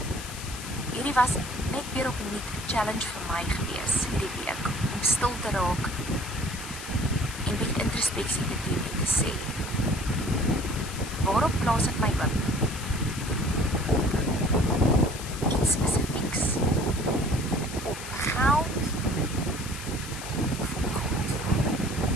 hierdie was net weer opnuut 'n challenge vir my gewees hierdie week, om stil te raak en bietjie introspeksie te doen en te sê, waarop plaas ek my hoop? Op iets spesifiek.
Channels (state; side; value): noise; left; hiss, 11 dB below the sound